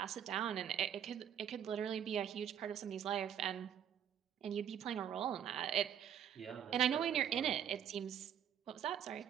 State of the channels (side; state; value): left; quieter; 9.3 dB